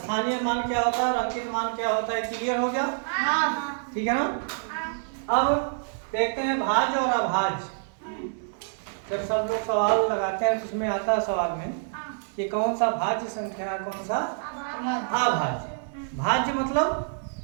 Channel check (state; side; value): silent; left; 59 dB below the other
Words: मान क्या होता है और अंकित मान क्या होता है, क्लियर हो गया? ठीक है ना। अब देखते हैं भाज्य और अभाज्य। जब सब लोग सवाल लगाते हैं तो उसमें आता है सवाल में कि कौन सा भाज्य संख्या है, कौन सा अभाज्य। भाज्य मतलब